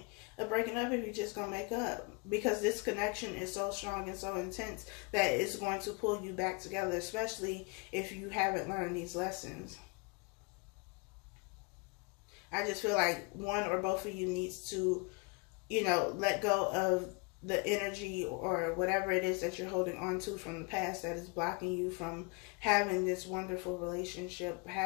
of breaking up if you're just going to make up? Because this connection is so strong and so intense that it's going to pull you back together, especially if you haven't learned these lessons. I just feel like one or both of you needs to, you know, let go of the energy or whatever it is that you're holding on to from the past that is blocking you from having this wonderful relationship,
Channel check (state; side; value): quieter; right; 30.5 dB